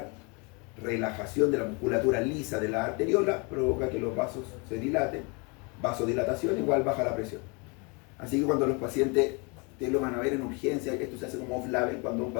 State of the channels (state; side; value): quieter; right; 31.2 dB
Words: relajación de la musculatura lisa de la arteriola, provoca que los vasos se dilaten. Vasodilatación igual baja la presión. Así que cuando los pacientes, ustedes lo van a ver en urgencia, esto se hace como off-label, cuando un